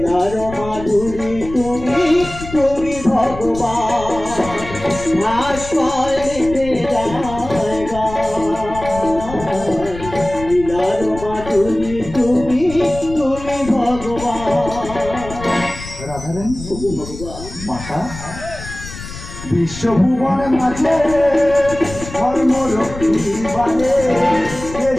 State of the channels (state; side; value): noise; left; rumble, 12 dB below the sound